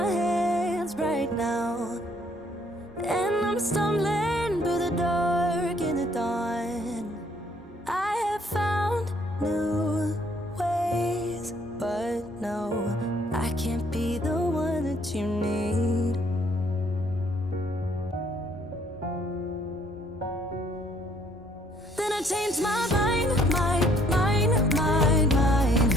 hands right now, and I'm stumbling through the dark in the dawn. I have found new ways, but no, I can't be the one that you need. Then I changed my mind.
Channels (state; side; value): normal; both; correlation 0.64